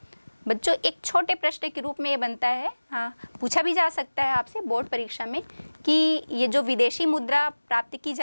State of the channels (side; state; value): both; inverted; correlation -1.00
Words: बच्चों, एक छोटे प्रश्न के रूप में ये बनता है, पूछा भी जा सकता है आपसे बोर्ड परीक्षा में, कि ये जो विदेशी मुद्रा प्राप्त की